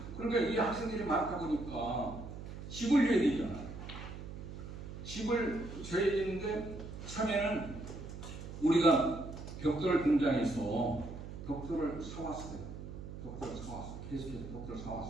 그러니까 이 학생들이 많다 보니까 집을 줘야 되잖아. 집을 줘야 되는데 처음에는 우리가 벽돌 공장에서 벽돌을 사왔어요. 계속해서 벽돌을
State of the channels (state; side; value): noise; right; hum, 10 dB below the sound